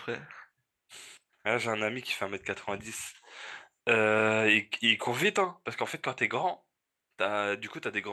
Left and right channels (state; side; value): identical; both; correlation 1.00